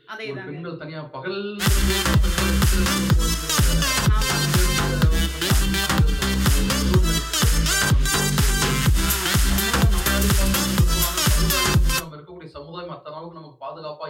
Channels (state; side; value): identical; both; correlation 1.00